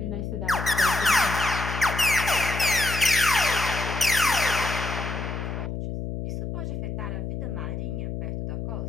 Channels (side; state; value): left; noise; hum, 5 dB below the sound